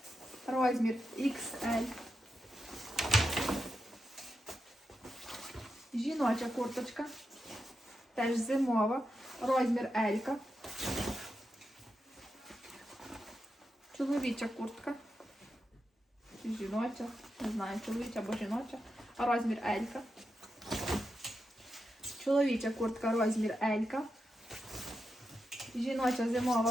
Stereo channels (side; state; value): both; normal; correlation 0.87